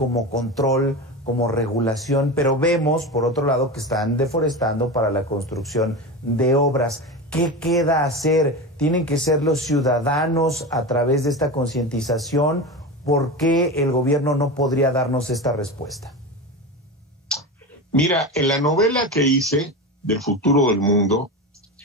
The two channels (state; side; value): normal; both; correlation 0.23